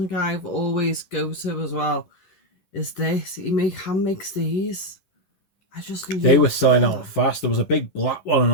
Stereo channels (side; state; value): right; late; 11 ms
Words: I've always go to as well. Is this? He hand makes these. I just love They were selling out fast. There was a big black one, an